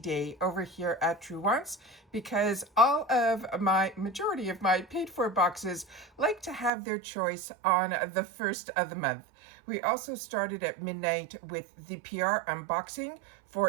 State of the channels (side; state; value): left; drops out; at 6.7 s